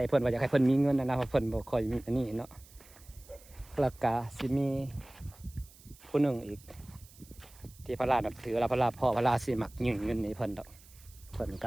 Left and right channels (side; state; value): right; noise; hiss, 23 dB below the sound